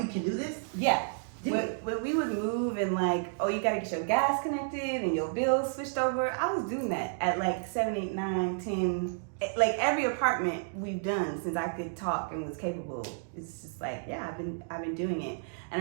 can do this? Yeah. When we would move and you gotta get your gas connected and your bills switched over, I was doing that at 7, 8, 9, 10. Every apartment we've done since I could talk and was capable. It's just I've been doing it.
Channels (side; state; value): left; silent; digital silence